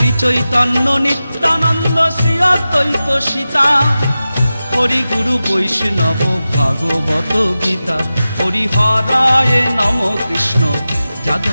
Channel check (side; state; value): both; inverted; correlation -0.94